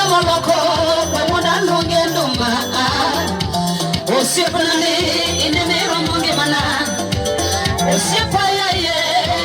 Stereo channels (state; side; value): identical; both; correlation 1.00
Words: moloko wemonda lungendo mana. Osipani inemero mungi mana. Osipaya ye